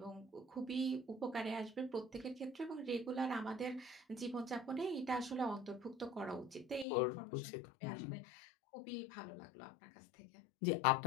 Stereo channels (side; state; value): right; drops out; at 6.9 s